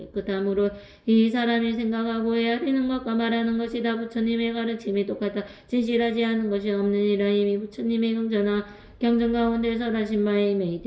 이 사람이 생각하고 헤아리는 것과 말하는 것이 다 부처님의 가르침이 똑같아 진실하지 않은 것이 없느니라. 이미 부처님의 경전 가운데 설하신 바에 임해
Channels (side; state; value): both; identical; correlation 1.00